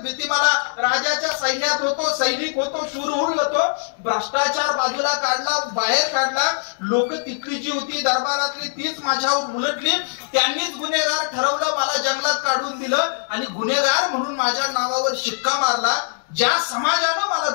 भीती. मला राजाच्या सैन्यात होतो, सैनिक होतो, शूरहुल होतो, भ्रष्टाचार बाजूला काढला, बाहेर काढला. लोक तिथली जी होती दरबारातली तीच माझ्यावर उलटली. त्यांनीच गुन्हेगार ठरवलं, मला जंगलात काढून दिलं आणि गुन्हेगार म्हणून माझ्या नावावर शिक्का मारला. ज्या समाजानं मला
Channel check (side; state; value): right; silent; digital silence